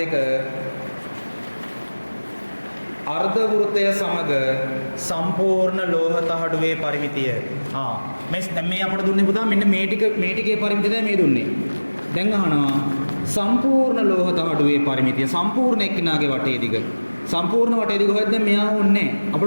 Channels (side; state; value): both; inverted; correlation -1.00